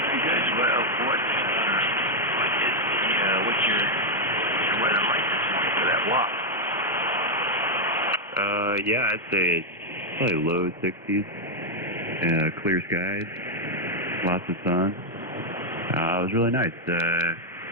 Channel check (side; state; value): both; normal; correlation 0.00